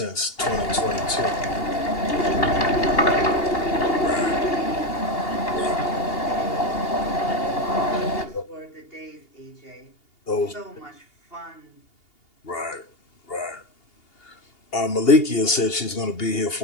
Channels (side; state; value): right; late; 2.8 ms